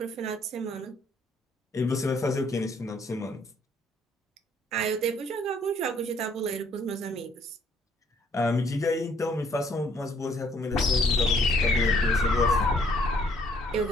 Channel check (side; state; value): both; normal; correlation 0.64